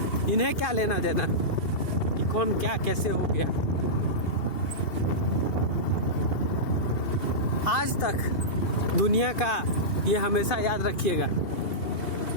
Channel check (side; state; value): right; late; 2.7 ms